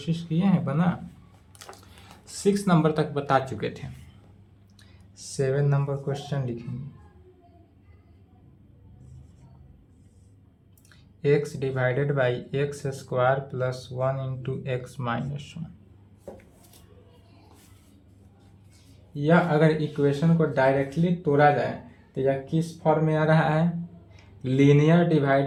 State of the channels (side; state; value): both; identical; correlation 1.00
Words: किए हैं, बना 6 नंबर तक बता चुके थे। 7 नंबर क्वेश्चन लिखेंगे। x divided by x square plus 1 into x minus 1। यह अगर इक्वेशन को डायरेक्टली तोड़ा जाए तो यह किस फॉर्म में आ रहा है? लीनियर